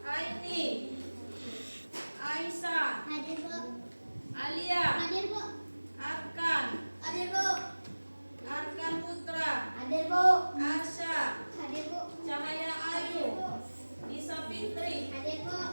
Aini, Aisyah, Hadir, Bu. Alia, Hadir, Bu. Arkan, Hadir, Bu. Arkan Putra, Hadir, Bu. Arsya, Hadir, Bu. Cahaya Ayu, Nisa Fitri, Hadir, Bu.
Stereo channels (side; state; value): both; inverted; correlation -1.00